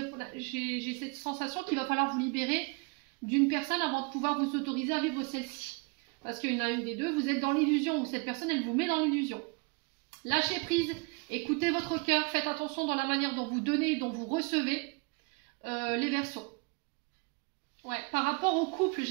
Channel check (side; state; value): left; quieter; 31.8 dB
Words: j'ai cette sensation qu'il va falloir vous libérer d'une personne avant de pouvoir vous autoriser à vivre celle-ci. Parce qu'il y en a une des deux, vous êtes dans l'illusion. Ou cette personne, elle vous met dans l'illusion. Lâchez prise. Écoutez votre cœur. Faites attention dans la manière dont vous donnez, dont vous recevez les Verseaux. Ouais, par rapport au couple,